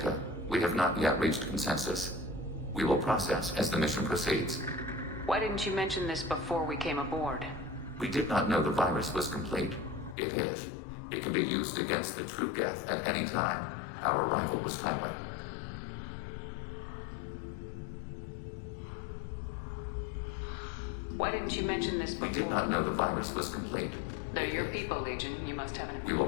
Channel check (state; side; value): drops out; right; at 10.2 s